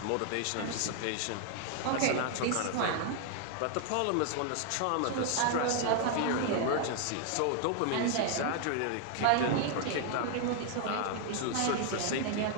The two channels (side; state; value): both; different; correlation 0.00